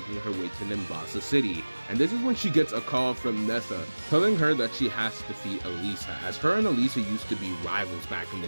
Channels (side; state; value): both; inverted; correlation -1.00